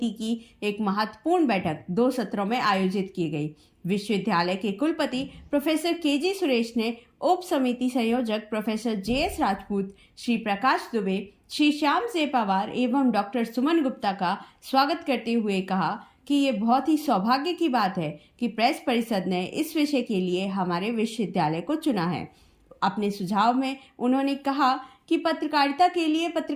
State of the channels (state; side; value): identical; both; correlation 1.00